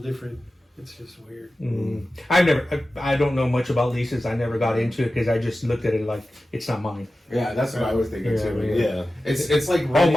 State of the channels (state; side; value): normal; both; correlation 0.94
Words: It's just weird. I don't know much about leases. I never got into it because I just looked at it like it's not mine. Yeah, that's what I was thinking too. yeah. It's like All